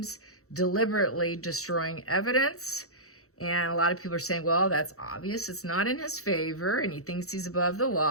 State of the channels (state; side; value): late; right; 0.64 ms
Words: deliberately destroying evidence. And a lot of people are saying, well, that's obvious. It's not in his favor, and he thinks he's above the